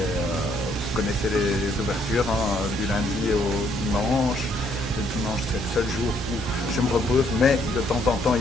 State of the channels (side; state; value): both; normal; correlation 0.69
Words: connaissez les ouvertures, hein, du lundi au dimanche. Le dimanche, c'est le seul jour où je me repose, mais de temps en temps,